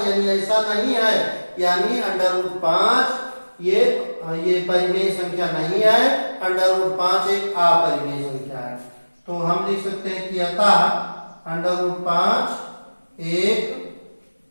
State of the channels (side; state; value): both; inverted; correlation -1.00